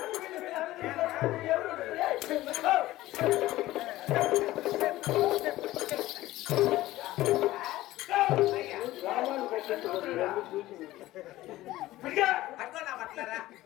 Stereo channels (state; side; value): quieter; right; 16.5 dB